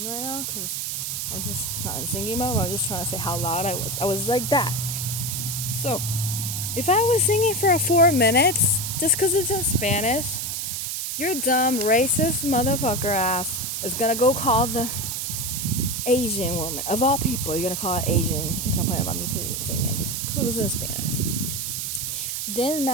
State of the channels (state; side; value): noise; right; hiss, 3 dB below the sound